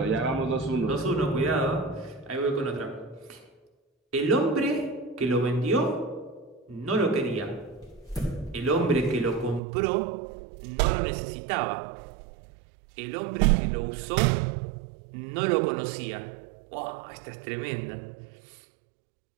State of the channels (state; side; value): drops out; left; at 9.6 s